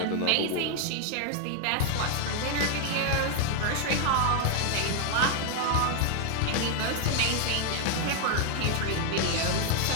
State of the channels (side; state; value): both; different; correlation 0.00